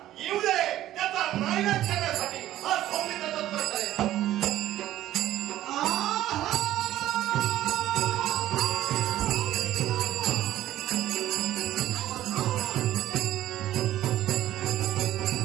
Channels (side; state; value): left; quieter; 13.7 dB